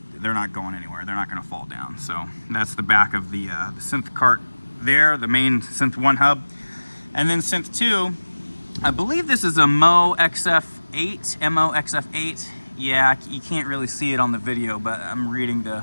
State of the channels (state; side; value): inverted; both; correlation -1.00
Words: they're not going anywhere. They're not going to fall down. So that's the back of the synth cart there, the main Synth 1 hub. And then Synth 2, I believe this is a MO XF8. Yeah, you can't really see it on the video, but I'm reading